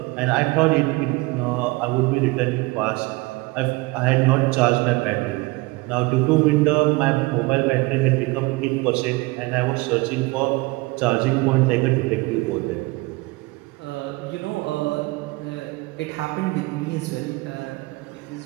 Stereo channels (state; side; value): quieter; left; 23.5 dB